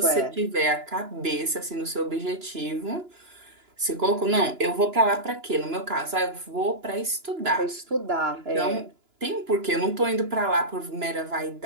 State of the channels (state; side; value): late; left; 2.9 ms